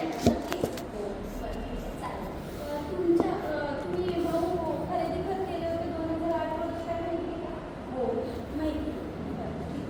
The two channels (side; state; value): both; identical; correlation 1.00